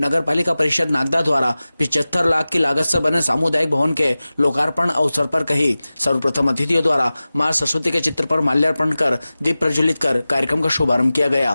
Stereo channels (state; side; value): inverted; both; correlation -0.97